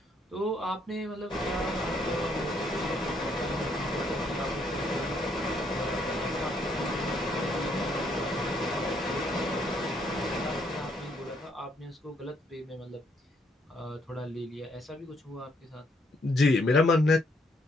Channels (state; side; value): normal; both; correlation 0.70